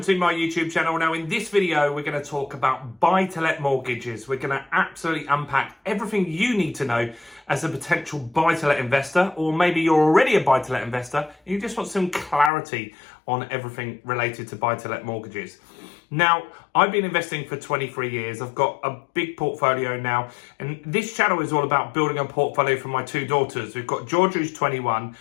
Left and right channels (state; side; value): drops out; right; at 12.5 s